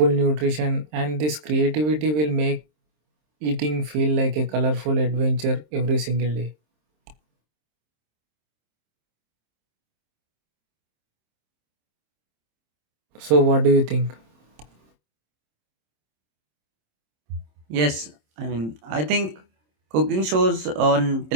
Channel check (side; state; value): left; late; 26 ms